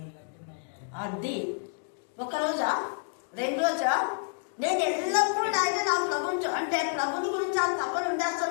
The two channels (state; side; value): silent; right; digital silence